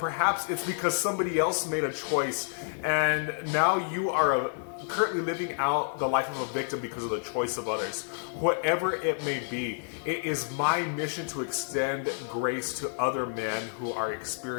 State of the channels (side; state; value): right; silent; digital silence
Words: it's because somebody else made a choice and now you are currently living out the life of a victim because of the choice of others. Whatever it may be, it is my mission to extend grace to other men who are